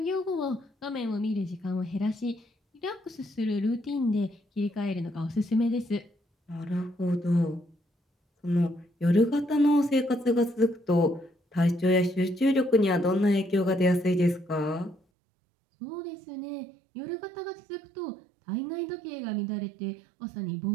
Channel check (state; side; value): drops out; left; at 15.0 s